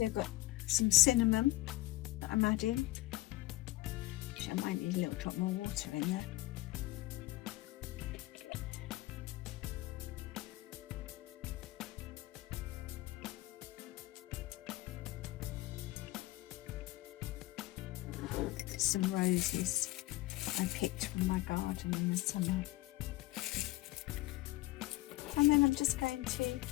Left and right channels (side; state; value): right; quieter; 18.7 dB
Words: got some cinnamon that I'm adding, which I might need a little drop more water in there. Some roses I picked from my garden in the summer. And then I'm just going